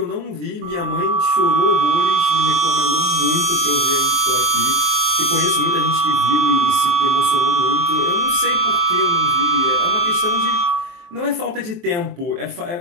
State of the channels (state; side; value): late; left; 23 ms